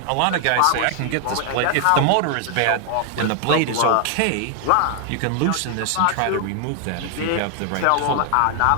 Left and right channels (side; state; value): both; different; correlation 0.00